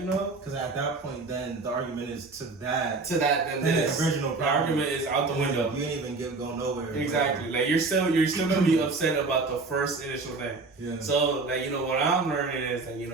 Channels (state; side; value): quieter; left; 3.8 dB